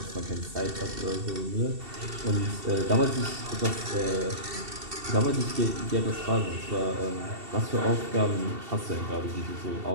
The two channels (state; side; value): late; left; 2.7 ms